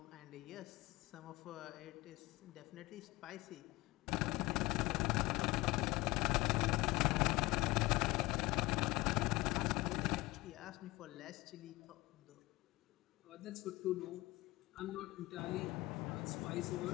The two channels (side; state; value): right; quieter; 20.6 dB